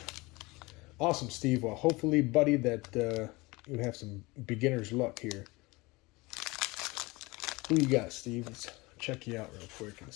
Awesome, Steve. Well, hopefully, buddy, that you have some beginner's luck here. Who you got, Steve? Let's check you out real quick and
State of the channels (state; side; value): quieter; right; 23.5 dB